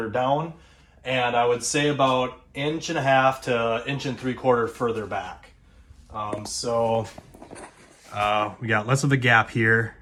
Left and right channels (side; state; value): both; identical; correlation 1.00